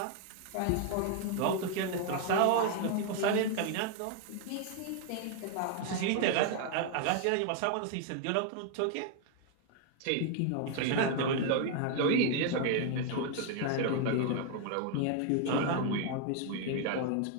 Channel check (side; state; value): both; different; correlation 0.00